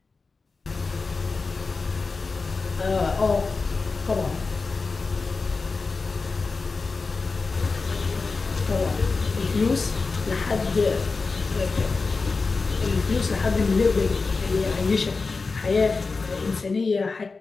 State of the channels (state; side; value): quieter; right; 4.2 dB